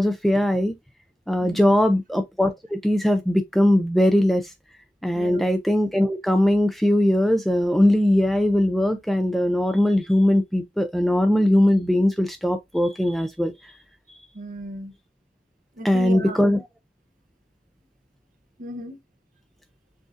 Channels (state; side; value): normal; both; correlation 0.96